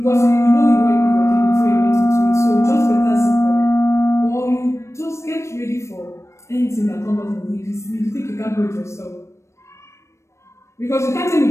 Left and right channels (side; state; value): right; late; 0.13 ms